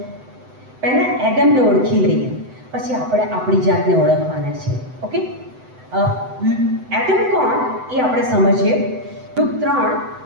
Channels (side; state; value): left; late; 7.9 ms